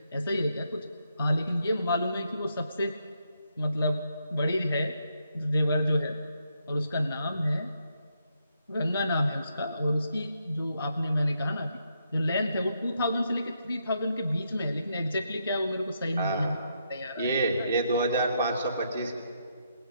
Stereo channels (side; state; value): both; inverted; correlation -0.79